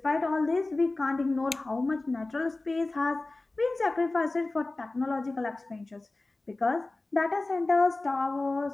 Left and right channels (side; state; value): right; quieter; 3.1 dB